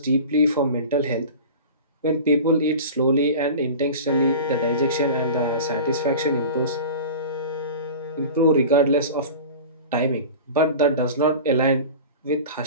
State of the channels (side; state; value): both; inverted; correlation -0.35